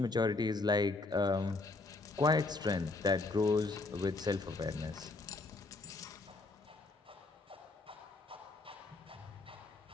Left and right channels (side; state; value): right; quieter; 3.5 dB